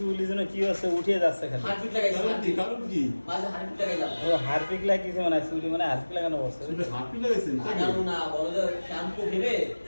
যেন কি হচ্ছে উঠে যাচ্ছে খালি। হারপিক লাগাইছি কারণ কি? মাঝে হারপিক লাগাইলাম ও হারপিক লাগিয়েছে মানে চুলি মানে হারপিক লাগানো পড়ছে। চুলে হাঁটু লাগাইছেন তাই আগানো না বলো যে শ্যাম্পু ভেবে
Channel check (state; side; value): inverted; both; correlation -1.00